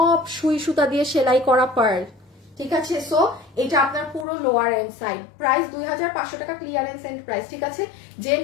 সুই সুতা দিয়ে সেলাই করা পার্ল, ঠিক আছে। সো এটা আপনার পুরো লোয়ার এন্ড সাইড, প্রাইস 2500 টাকা ক্লিয়ারেন্স এন্ড প্রাইস, ঠিক আছে। যে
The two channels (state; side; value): drops out; right; at 4.2 s